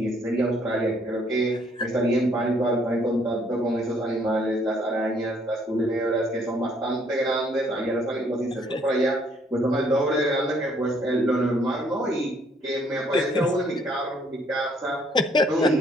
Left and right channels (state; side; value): normal; both; correlation 0.65